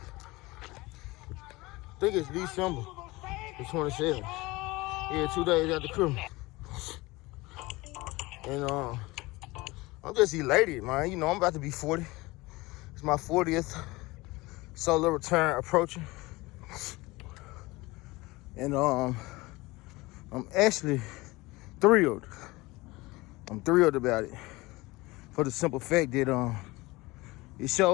I think it's December the 27th. Yeah, 2 days after Christmas. And I'm just elated, man. You know, I'm about to be 40. It's my 40th solo return approaching. And I'm actually thrilled. I'm thrilled about it for the simple fact that it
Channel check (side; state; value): right; quieter; 21.6 dB